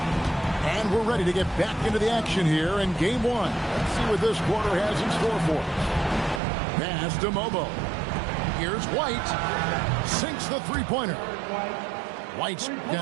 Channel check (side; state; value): left; drops out; at 6.4 s